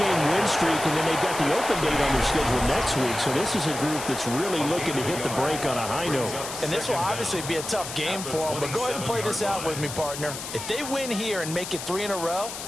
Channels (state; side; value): noise; left; hiss, 8 dB below the sound